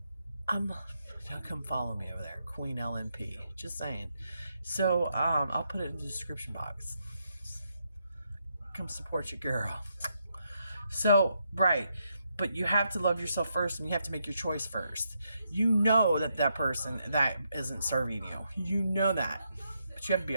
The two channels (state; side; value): inverted; both; correlation -0.80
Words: come follow me over there, Queen LNP. Just saying. So, I'll put it in the description box. Come support your girl. So, right. But you have to love yourself first, and you have to make your choice first. You know that person that isn't serving you. You know that. But you have to be